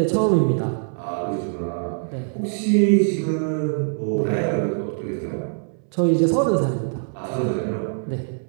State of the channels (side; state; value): left; silent; 63 dB below the other